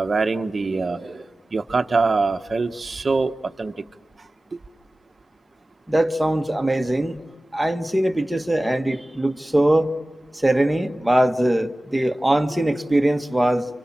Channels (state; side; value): normal; both; correlation 0.96